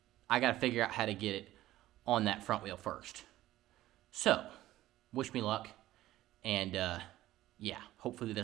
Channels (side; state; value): left; quieter; 15.1 dB